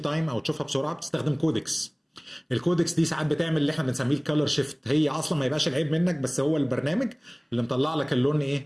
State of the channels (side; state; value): both; identical; correlation 1.00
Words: او تشوفها بسرعه، بتستخدم كودكس. الكودكس دي ساعات بتعمل اللي احنا بنسميه الكالر شيفت، هي اصلا ما يبقاش العيب منك، بس هو البرنامج اللي مطلع لك اللون